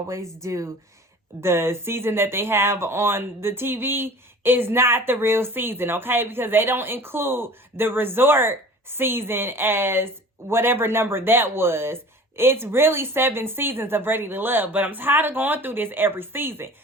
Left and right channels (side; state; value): both; normal; correlation 0.42